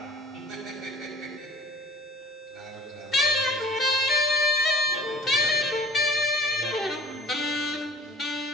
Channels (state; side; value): normal; both; correlation 0.50